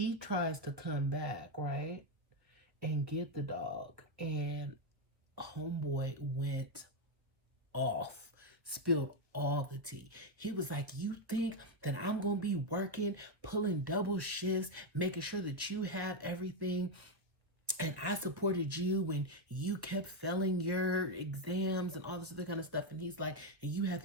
tries to come back, right? And get the dog. And homeboy went off, spilled all the tea. He was like, you think that I'm going to be working, pulling double shifts, making sure that you have everything, and I supported you when you kept failing your exams and all this other kind of stuff. And he's like, and you have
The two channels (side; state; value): left; late; 1.5 ms